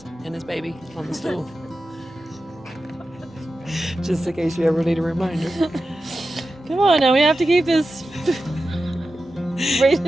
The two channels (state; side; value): normal; both; correlation 0.92